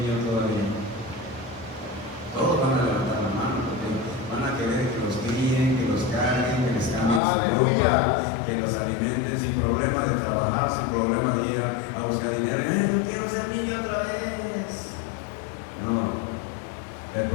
todavía? Todos van a levantar la mano, porque van a querer que los críen, que los carguen, que les cambien su ropa, que los alimenten sin problema de trabajar, sin problema de ir a buscar dinero. Yo quiero ser niño otra vez. No. El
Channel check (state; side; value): drops out; right; at 7.2 s